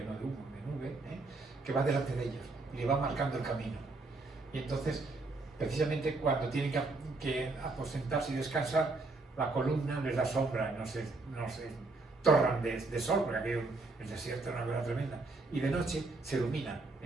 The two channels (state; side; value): quieter; left; 3.4 dB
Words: no de humo, de nube, que va delante de ellos y le va marcando el camino. Y entonces, precisamente cuando tienen que aposentarse y descansar, la columna les da sombra, no se torran de sol, porque aquello, el desierto es una cosa tremenda. Y de noche se ilumina